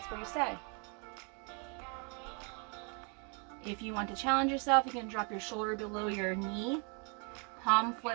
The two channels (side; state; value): left; quieter; 36.6 dB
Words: where you stay. If you want to challenge yourself, you can drop your shoulder below your knee. Palm